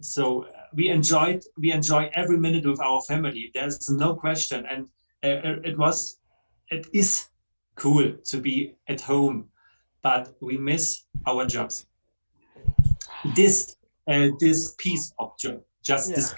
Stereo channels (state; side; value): inverted; both; correlation -1.00